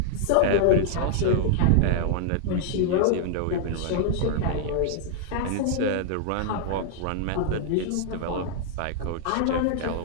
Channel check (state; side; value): different; both; correlation -0.01